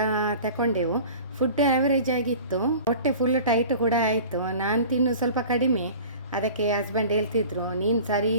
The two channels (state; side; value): inverted; both; correlation -0.42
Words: ತಗೊಂಡೆವು. ಫುಡ್ ಆ್ಯಾವರೇಜ್ ಆಗಿತ್ತು, ಹೊಟ್ಟೆ ಫುಲ್ ಟೈಟ್ ಕೂಡ ಆಯಿತು. ನಾನು ತಿನ್ನು ಸ್ವಲ್ಪ ಕಡಿಮೆ, ಅದಕ್ಕೆ ಹಸ್ಬೆಂಡ್ ಹೇಳ್ತಿದ್ರು ನೀನು ಸರಿ